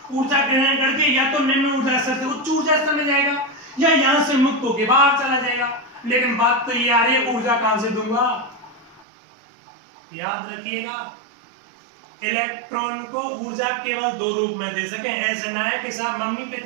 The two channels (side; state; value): left; drops out; at 9.1 s